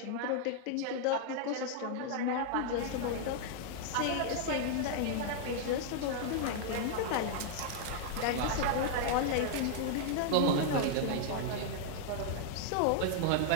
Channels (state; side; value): different; both; correlation 0.00